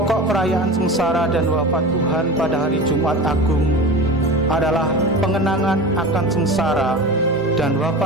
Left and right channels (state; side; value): normal; both; correlation 0.31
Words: perayaan sengsara dan wafat Tuhan pada hari Jumat Agung adalah pengenangan akan sengsara dan